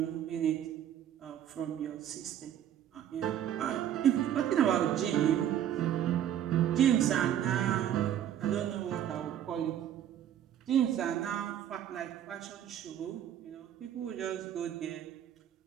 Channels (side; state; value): left; quieter; 10.5 dB